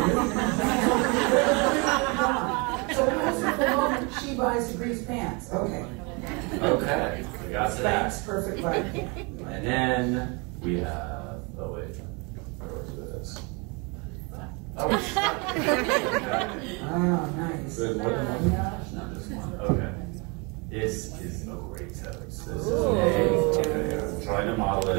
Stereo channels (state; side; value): quieter; left; 30.4 dB